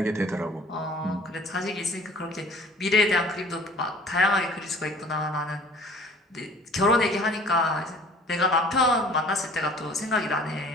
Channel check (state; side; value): normal; both; correlation 0.49